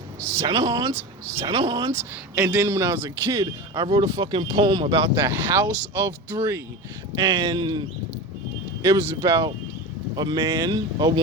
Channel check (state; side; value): normal; both; correlation 0.27